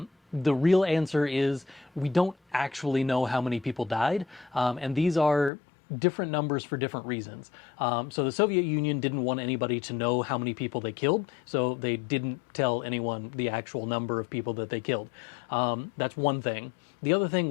The real answer is we don't actually know how many people died, and these are different numbers for different reasons. So the Soviet Union didn't want anybody to know how many people they killed, so they didn't tell anyone the actual number of people that they killed. That's one thing. The other thing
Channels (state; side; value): drops out; right; at 5.5 s